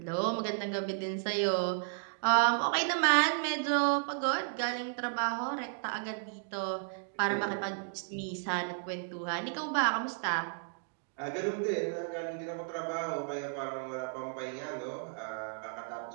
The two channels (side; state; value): left; silent; digital silence